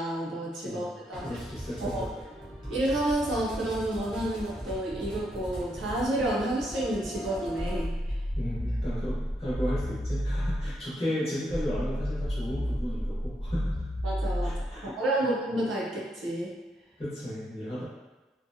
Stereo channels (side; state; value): both; normal; correlation 0.79